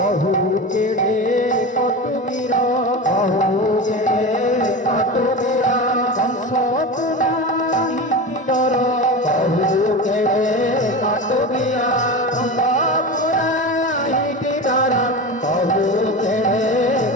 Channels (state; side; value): normal; both; correlation 0.26